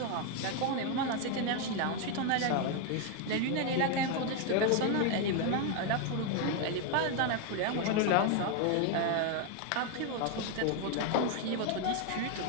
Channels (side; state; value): both; different; correlation 0.01